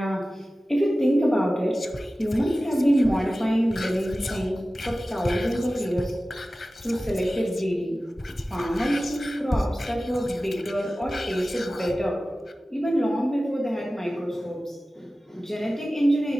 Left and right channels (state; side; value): normal; both; correlation 0.96